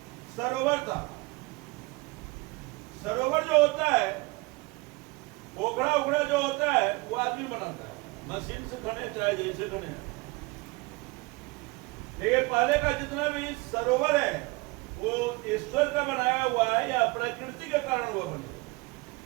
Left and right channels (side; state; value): left; quieter; 24.6 dB